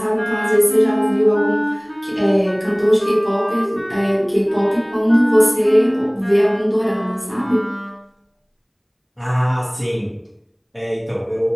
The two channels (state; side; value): identical; both; correlation 1.00